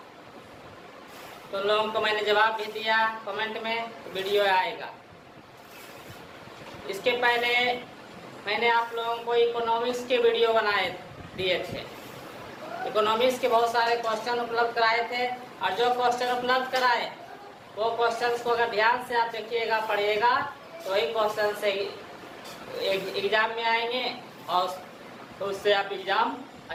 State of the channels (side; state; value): both; identical; correlation 1.00